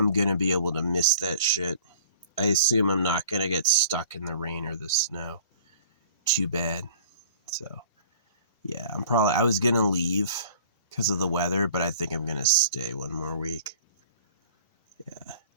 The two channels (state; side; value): inverted; both; correlation -0.47